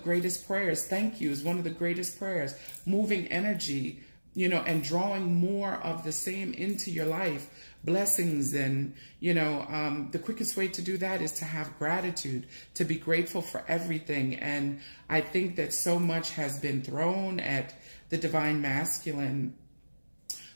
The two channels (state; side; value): inverted; both; correlation -1.00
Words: prayers. Thank you is one of the greatest prayers. Moving energy, and drawing more of the same into your life. Blessings and, the quickest way to do that is to have gratitude, to be grateful for everything. And I think that so much has been thrown at the Divine Masculine